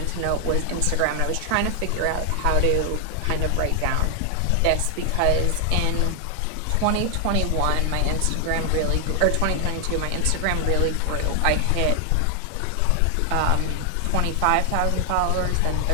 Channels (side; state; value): both; different; correlation 0.00